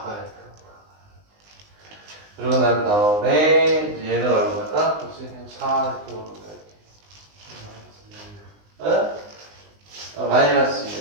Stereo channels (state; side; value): late; left; 19 ms